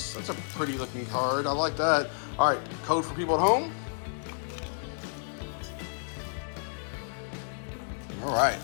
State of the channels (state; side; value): silent; right; digital silence